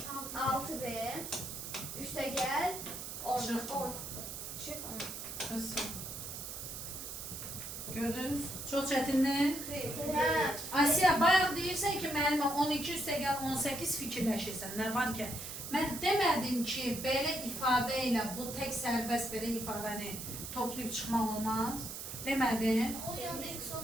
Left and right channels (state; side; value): noise; right; hiss, 8 dB below the sound